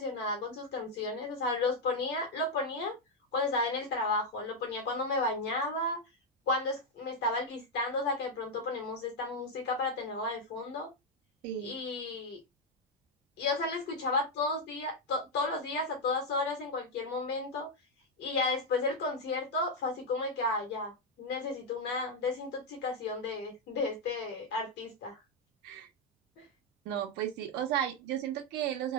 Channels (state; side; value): normal; both; correlation 0.02